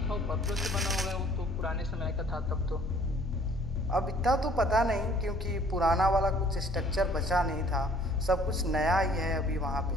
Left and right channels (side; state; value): both; normal; correlation 0.56